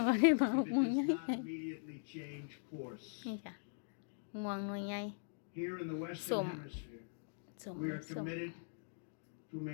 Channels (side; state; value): right; silent; digital silence